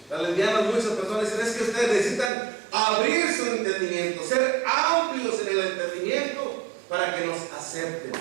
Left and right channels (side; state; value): left; drops out; at 2.3 s